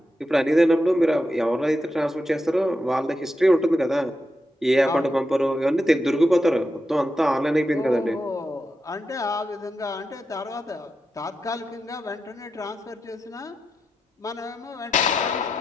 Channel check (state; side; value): normal; both; correlation 0.87